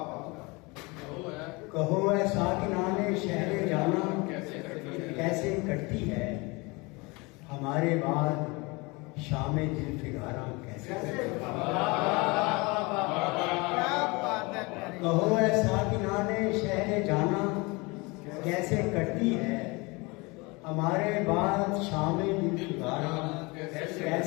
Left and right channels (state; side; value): quieter; right; 26.1 dB